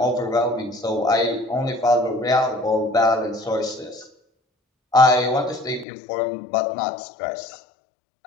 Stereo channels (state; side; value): drops out; right; at 5.9 s